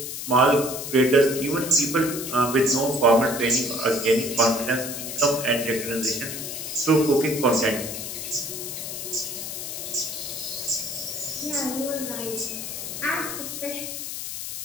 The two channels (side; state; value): left; noise; hiss, 6 dB below the sound